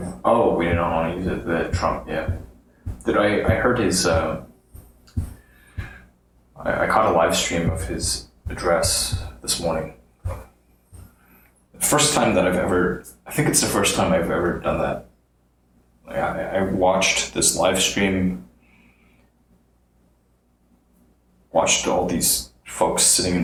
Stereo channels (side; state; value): both; identical; correlation 1.00